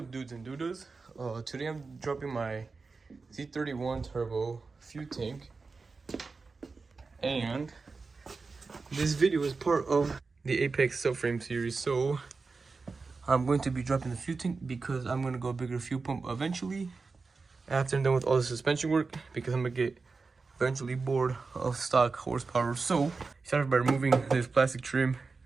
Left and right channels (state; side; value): quieter; left; 4.3 dB